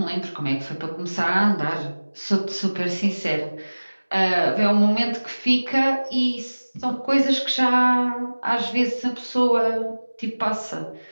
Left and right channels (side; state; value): both; inverted; correlation -1.00